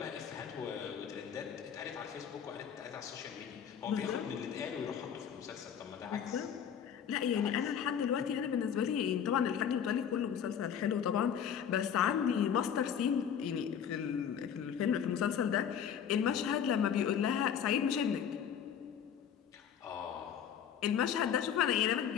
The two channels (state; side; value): quieter; right; 8.4 dB